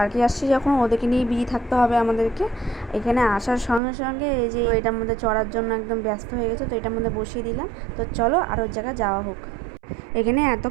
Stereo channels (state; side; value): drops out; left; at 3.8 s